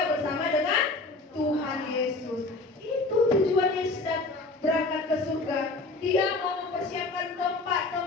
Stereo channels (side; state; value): right; quieter; 3.3 dB